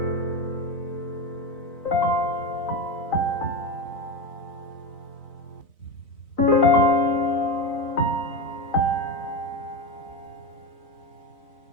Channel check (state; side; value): late; right; 4.0 ms